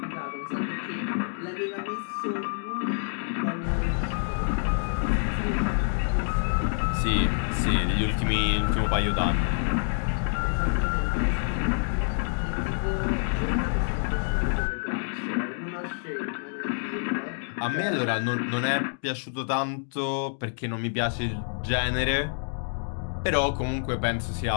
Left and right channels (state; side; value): silent; right; digital silence